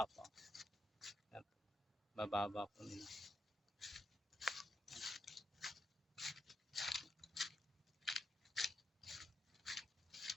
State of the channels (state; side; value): normal; both; correlation 0.81